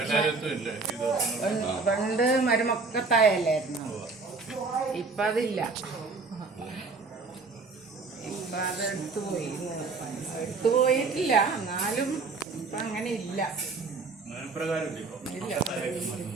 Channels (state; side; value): quieter; left; 4.1 dB